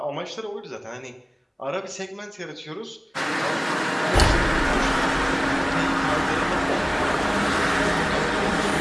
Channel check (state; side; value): identical; both; correlation 1.00